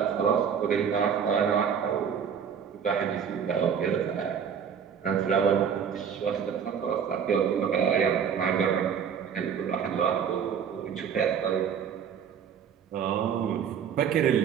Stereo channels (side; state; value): left; quieter; 7.5 dB